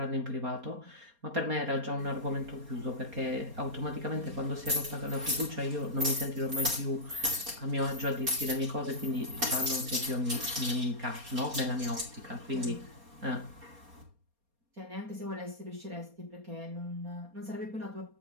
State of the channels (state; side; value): late; left; 4.3 ms